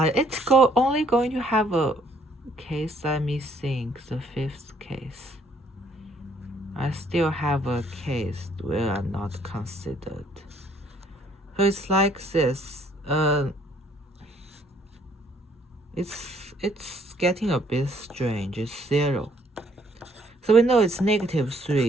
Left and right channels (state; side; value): normal; both; correlation 0.65